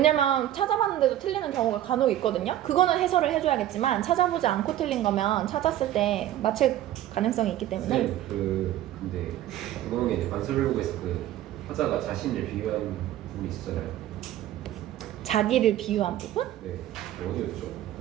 찾아봤는데도 틀리는 경우가 간혹 있거든요. 그거는 해설을 해줘야겠지만 찾아보지 않고 틀린 거면 찾았을 때 맞힐 가능성이 있기 때문에. 네, 근데 그거는 이제 관습을보고에서 그 화자가 자신을 비유한 부분이 있었잖아요. 자기를 비유한 부분? 네, 어디였죠?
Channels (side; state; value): left; quieter; 12.9 dB